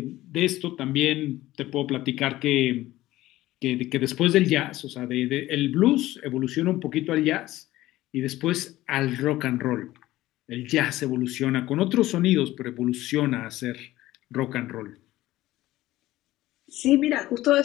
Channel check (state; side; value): quieter; right; 16.3 dB